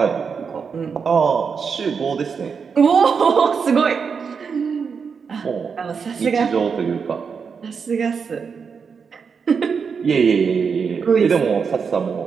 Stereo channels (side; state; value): left; quieter; 5.9 dB